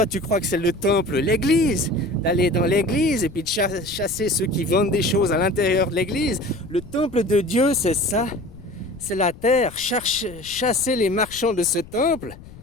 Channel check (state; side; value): noise; left; rumble, 18 dB below the sound